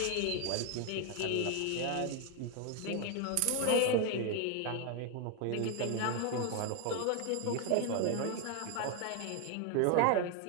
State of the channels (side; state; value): both; different; correlation 0.00